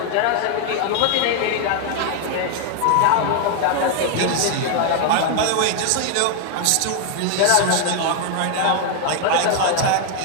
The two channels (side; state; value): both; different; correlation 0.00